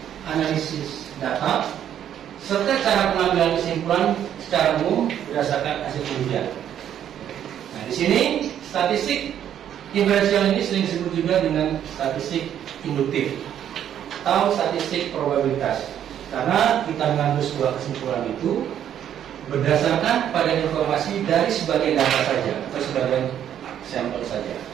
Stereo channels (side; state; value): left; quieter; 10.0 dB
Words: analisis data, serta cara pengambilan kesimpulan secara umum berdasarkan hasil penelitian. Nah, di sini statistik diferensial ini sering disebut juga dengan statistik induktif atau statistik probabilitas, karena kita mengambil sebuah kesimpulan itu berdasarkan pada informasi dari sebagian data saja atau sebagian sampel saja.